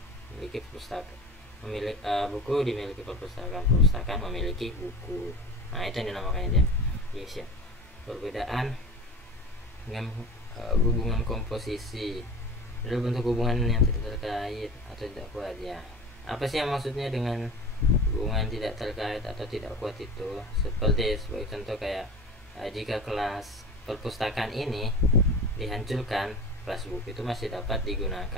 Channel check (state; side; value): normal; both; correlation 0.34